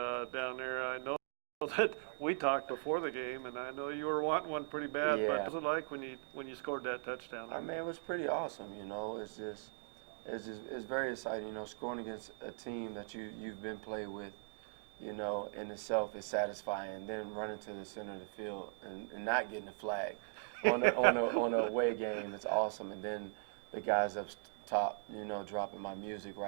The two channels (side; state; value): left; silent; digital silence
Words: there. I know that we talked before the game, and I know you were wanting one pretty bad. But Yeah. what was it like when you scored that touchdown? I mean, it was pretty awesome. You know, it's very exciting. You know, scoring against a team that you've been played with, you know, in itself is satisfying. And then running to the center of the field and not getting a flag on a away game, it's awesome. And then the guys up top, you know, dropping my music